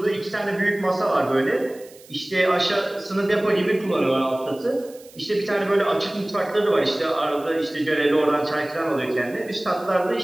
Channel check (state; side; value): noise; right; hiss, 24 dB below the sound